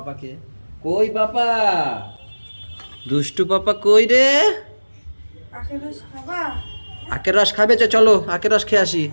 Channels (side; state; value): both; inverted; correlation -1.00